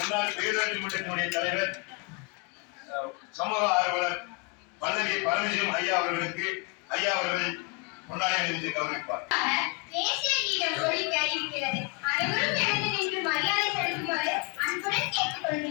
பேரூராட்சி மன்றத்தினுடைய தலைவர் சமூக ஆர்வலர் பல்லவி பரமசிவம் ஐயா அவர்களுக்கு ஐயா அவர்கள் பொன்னாடை அணிவித்து கௌரவிப்பார். தேசிய கீதம் ஒலிக்க இருக்கிறது. அனைவரும் எழுந்து நின்று மரியாதை செலுத்துமாறு அன்புடன் கேட்டுக்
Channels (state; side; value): quieter; right; 30.8 dB